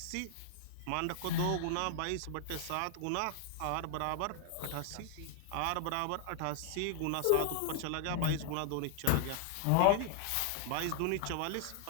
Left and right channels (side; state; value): both; different; correlation -0.01